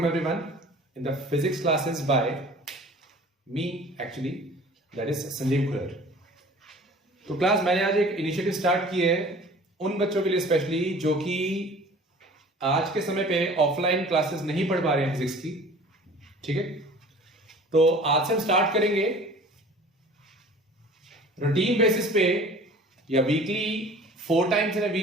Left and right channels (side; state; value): both; normal; correlation 0.46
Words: everyone in the physics classes by me actually, that is Sanjeev खुरर। तो class मैंने आज एक initiative start की है उन बच्चों के लिए स्पेशली जो कि आज के समय पे ऑफलाइन क्लासेस नहीं पढ़ पा रहे हैं फिजिक्स की। ठीक है, तो आज से हम स्टार्ट करेंगे रूटीन बेसिस पे या weekly 4 times in a